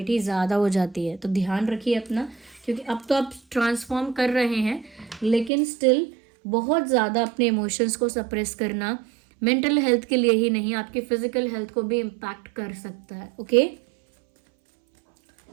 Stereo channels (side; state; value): left; drops out; at 5.5 s